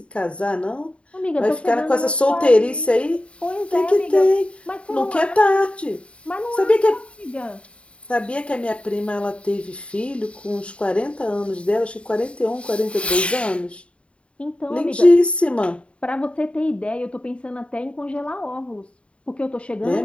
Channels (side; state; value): right; late; 0.060 ms